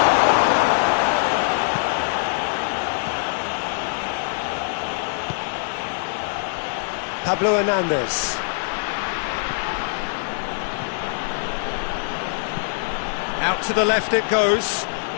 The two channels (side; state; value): right; silent; digital silence